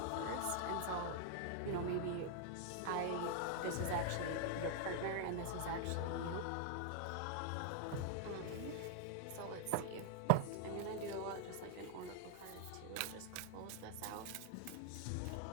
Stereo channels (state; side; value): different; both; correlation 0.00